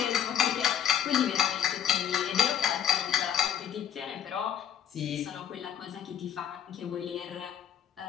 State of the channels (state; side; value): quieter; right; 9.6 dB